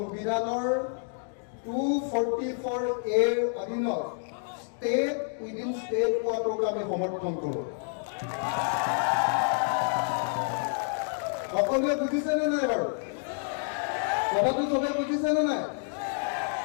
244A অধীনত ষ্টেট উইদিন ষ্টেট পোৱাটোক আমি সমৰ্থন কৰোঁ। সকলোৱে বুজিছেনে নাই বাৰু? কথাটো চবে বুজিছেনে নাই?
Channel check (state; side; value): silent; right; 59 dB below the other